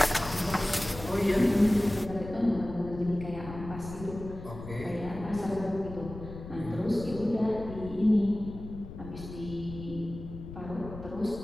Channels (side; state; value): left; noise; rumble, 12 dB below the sound